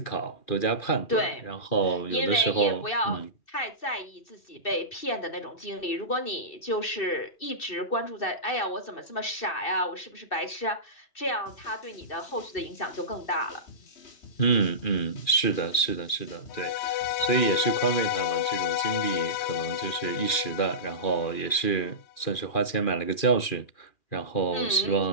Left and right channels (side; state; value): right; late; 2.4 ms